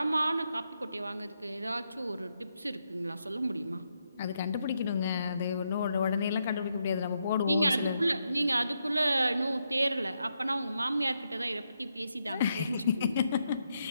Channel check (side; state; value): both; inverted; correlation -0.81